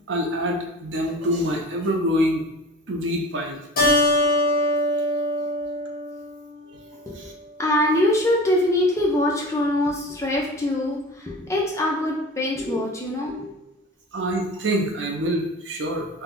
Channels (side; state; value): both; normal; correlation 0.36